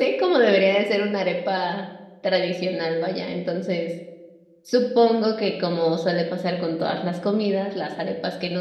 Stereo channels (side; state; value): both; identical; correlation 1.00